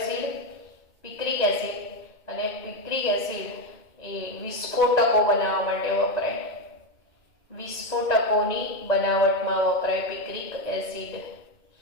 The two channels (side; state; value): right; late; 1.9 ms